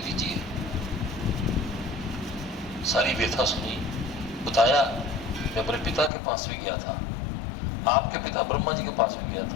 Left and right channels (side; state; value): right; drops out; at 6.1 s